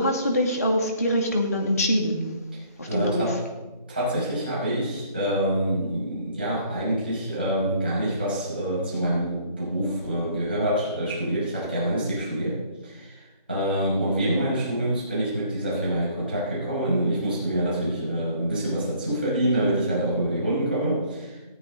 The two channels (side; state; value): both; inverted; correlation -0.59